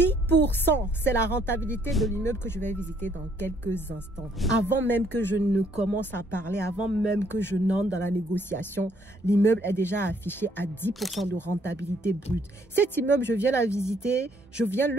c'est la rentabilité de l'immeuble que je vais visiter dans quelques instants. Avant même que je ne commence à parler, avant même que je n'entre dans la négociation, l'immeuble est déjà affiché à 10% de rentabilité brute. Cet immeuble, je viens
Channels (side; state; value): both; normal; correlation 0.67